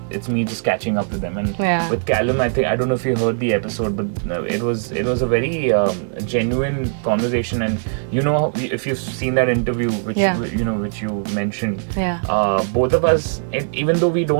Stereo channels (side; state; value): left; silent; digital silence